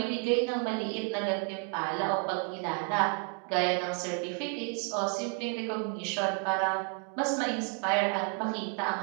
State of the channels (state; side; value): quieter; left; 35.0 dB